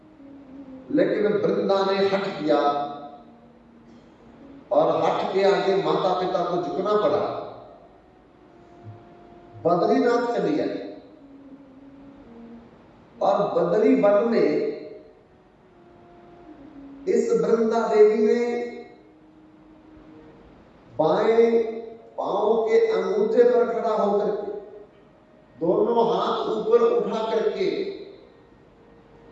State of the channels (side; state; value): both; identical; correlation 1.00